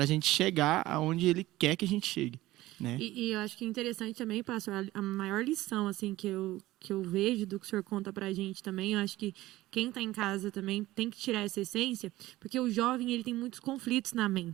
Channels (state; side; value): quieter; left; 17.1 dB